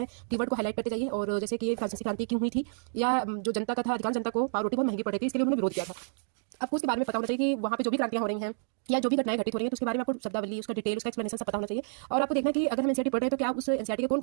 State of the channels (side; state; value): left; silent; digital silence